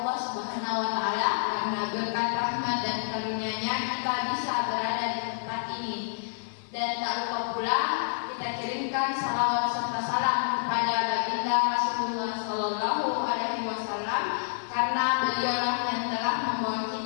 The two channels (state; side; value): silent; right; 59 dB below the other